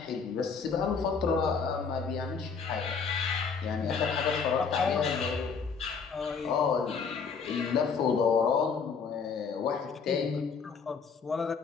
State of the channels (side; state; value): right; quieter; 5.6 dB